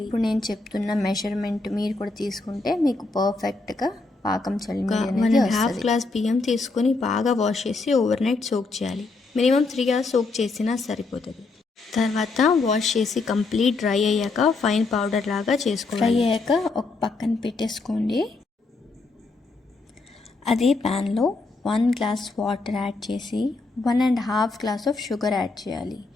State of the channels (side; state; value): right; quieter; 3.7 dB